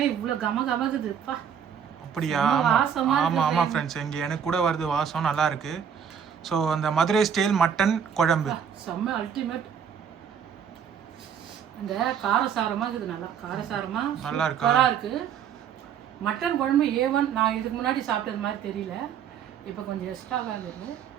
இவ்வளோ கமகமக்குதுப்பா. அப்படியா? ஆமாம் ஃப்ரெண்ட்ஸ், இங்கே எனக்கு கூட வருது வாசம், நல்லா இருக்கு. ஸோ அந்த மதுரை ஸ்டைல் மட்டன் குழம்பு செம்ம அல்டிமேட். அந்த காரசாரமாக இருக்குது, நல்லா இருக்கு. மட்டன் குழம்பு A1 நான் இதுக்கு முன்னாடி சாப்பிட்டது மாதிரி தெரியல. இப்போ கொஞ்சம் எக்ஸ்ட்ராவாக இருக்குது.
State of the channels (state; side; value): quieter; left; 7.9 dB